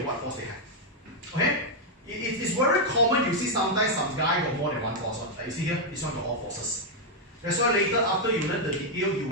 what force they have. Okay? It's very common, you see sometimes some guy got more than one force. Like you see here, this one got all forces. That's why later after you learn the detail, you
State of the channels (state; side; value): normal; both; correlation -0.01